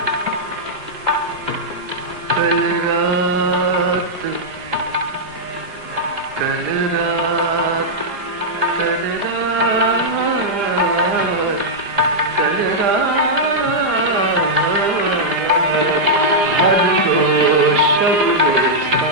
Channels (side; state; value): left; late; 5.0 ms